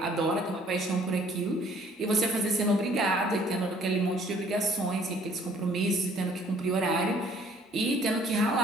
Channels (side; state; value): both; normal; correlation 0.58